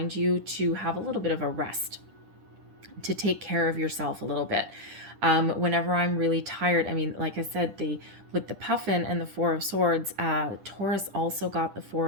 you to have a little bit of a rest, to take care of yourself a little bit. Whenever I'm really tired, I mean, like I said, with the puffin and the Four of Swords, Taurus also got the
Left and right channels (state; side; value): late; left; 10 ms